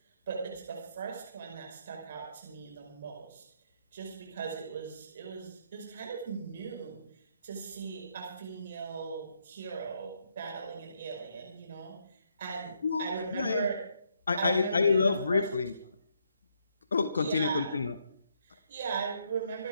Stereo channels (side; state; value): both; inverted; correlation -0.75